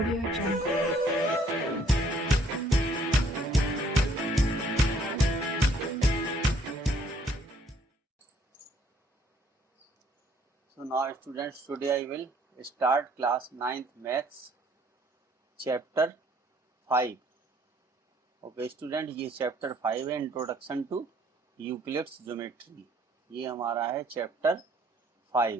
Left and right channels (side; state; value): both; normal; correlation 0.63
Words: Jungle. So now students, today I will start class 9th maths chapter 5. Okay student, ये chapter 5 है, introduction to Euclid's geometry. ये हमारा है chapter 5